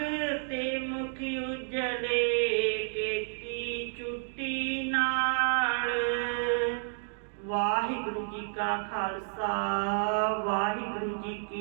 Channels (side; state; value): left; silent; digital silence